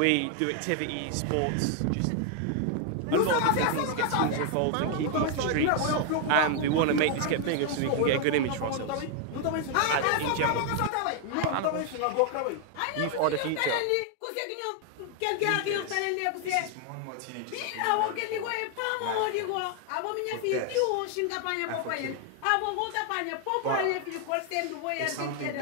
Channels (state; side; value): different; both; correlation 0.00